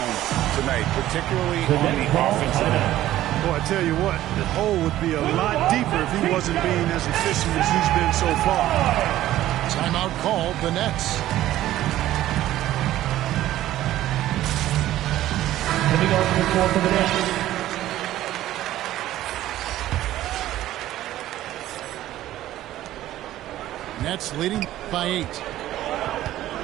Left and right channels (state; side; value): quieter; left; 14.0 dB